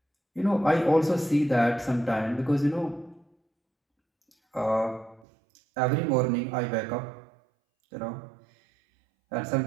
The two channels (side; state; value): left; drops out; at 5.2 s